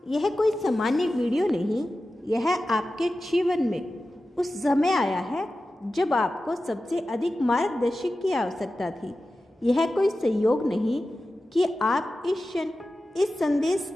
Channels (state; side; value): normal; both; correlation 0.94